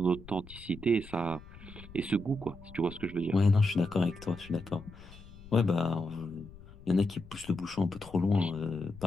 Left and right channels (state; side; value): noise; left; rumble, 18 dB below the sound